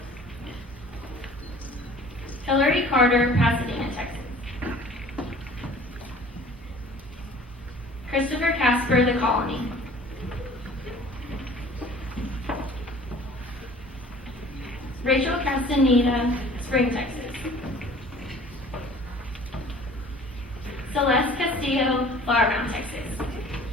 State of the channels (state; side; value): normal; both; correlation 0.48